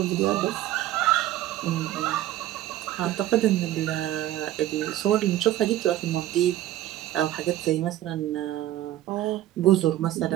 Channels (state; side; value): quieter; left; 13.8 dB